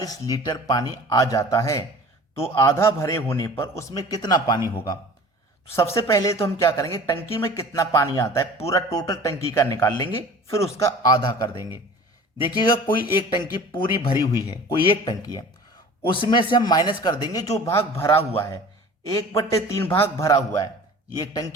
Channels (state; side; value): normal; both; correlation 0.42